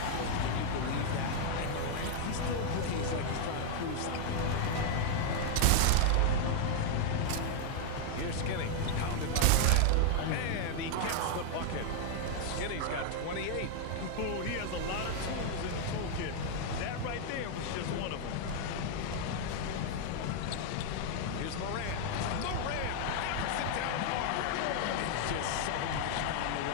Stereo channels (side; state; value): both; different; correlation 0.00